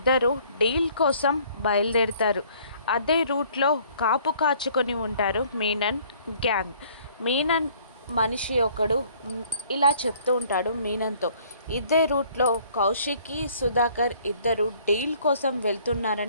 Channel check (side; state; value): both; inverted; correlation -0.58